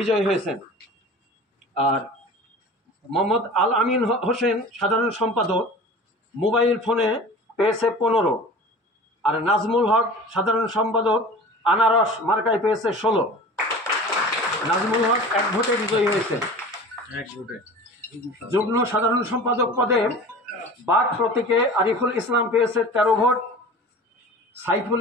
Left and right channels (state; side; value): normal; both; correlation 0.38